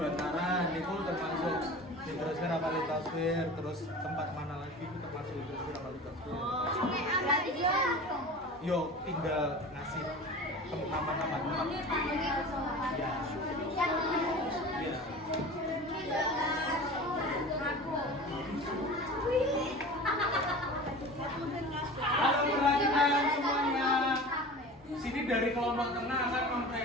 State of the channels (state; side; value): normal; both; correlation 0.36